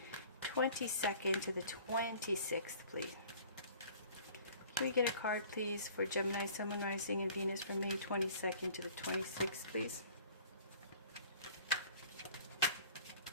22nd to the 26th, please. Can we get a card, please, for Gemini, Sun, Moon, Rising, and Venus from May 22nd to the 26th, please?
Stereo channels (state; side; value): inverted; both; correlation -0.49